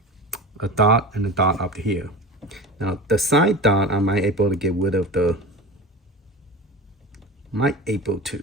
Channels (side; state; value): both; normal; correlation 0.30